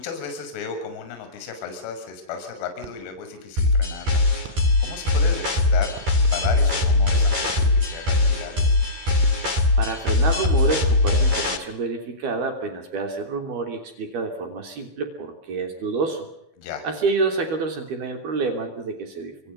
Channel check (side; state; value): left; late; 12 ms